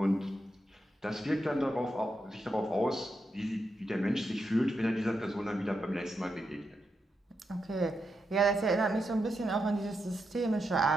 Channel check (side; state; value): both; normal; correlation 0.84